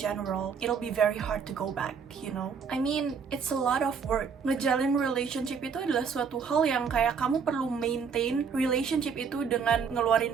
general, it'll be very hard to go back, you know? I mean, it's a lot of work. Ngejalin relationship itu adalah suatu hal yang kayak kamu perlu maintain relationship itu dengan ngeluarin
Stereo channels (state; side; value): quieter; left; 6.1 dB